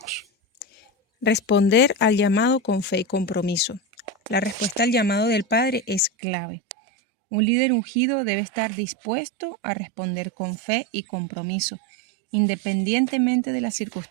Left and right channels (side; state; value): left; drops out; at 6.1 s